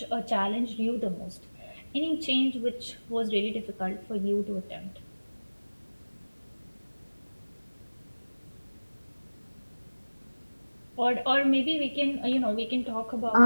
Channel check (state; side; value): inverted; both; correlation -1.00